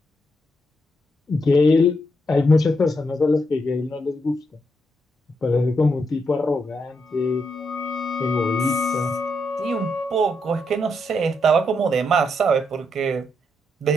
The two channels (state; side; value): normal; both; correlation 0.80